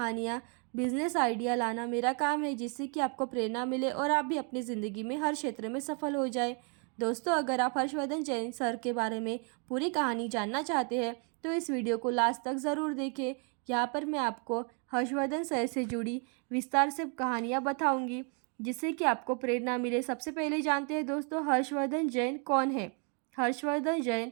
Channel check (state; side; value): quieter; left; 38.3 dB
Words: बिजनेस आइडिया लाना मेरा काम है, जिससे कि आपको प्रेरणा मिले और आप भी अपनी ज़िंदगी में हर क्षेत्र में सफल हो जाए। दोस्तों, अगर आप हर्षवर्धन जैन सर के बारे में पूरी कहानी जानना चाहते हैं तो इस वीडियो को लास्ट तक ज़रूर देखें। यहाँ पर मैं आपको हर्षवर्धन सर से जुड़ी विस्तार से कहानियाँ बताऊँगी, जिससे कि आपको प्रेरणा मिले। सबसे पहले जानते हैं दोस्तों, हर्षवर्धन जैन कौन है। हर्षवर्धन